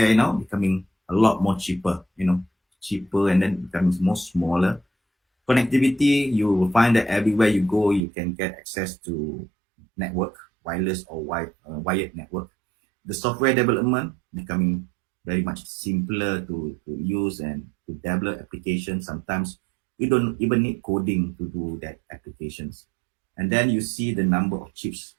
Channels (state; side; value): drops out; left; at 8.0 s